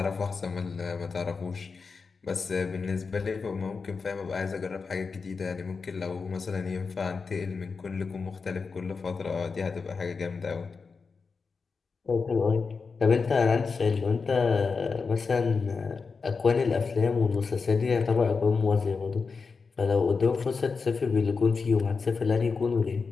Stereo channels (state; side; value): quieter; right; 4.9 dB